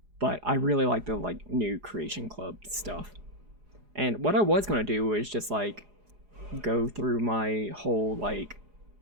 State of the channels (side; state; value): left; late; 4.8 ms